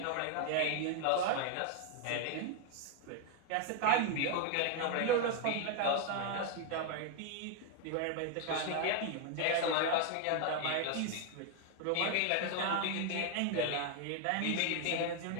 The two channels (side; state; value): both; different; correlation 0.00